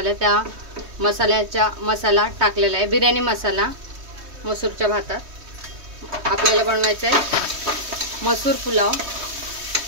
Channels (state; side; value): late; left; 3.2 ms